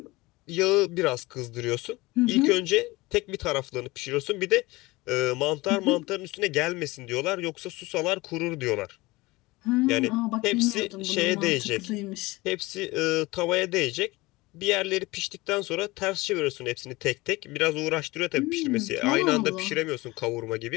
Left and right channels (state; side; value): quieter; right; 21.5 dB